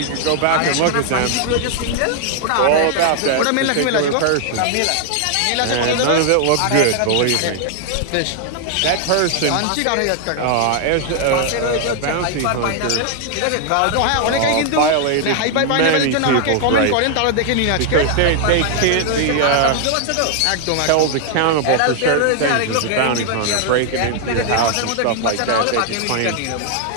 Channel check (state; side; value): different; both; correlation 0.00